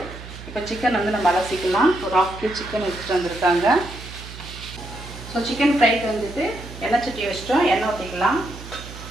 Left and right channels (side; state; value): right; noise; hum, 14 dB below the sound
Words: இப்போ சிக்கன் வந்து நம்ம அலசிக்கலாம். ஒரு 1/2 kg சிக்கன் எடுத்துகிட்டு வந்திருக்காங்க. ஸோ சிக்கன் ஃப்ரைக்கு வந்துட்டு எண்ணெய் சட்டி வச்சிட்டோம். எண்ணெய் ஊற்றிக்கலாம்.